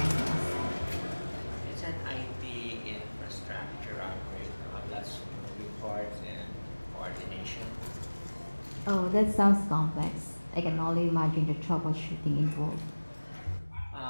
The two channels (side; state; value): both; inverted; correlation -1.00